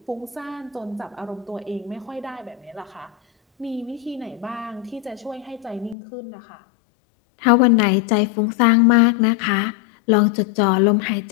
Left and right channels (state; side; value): drops out; right; at 6.0 s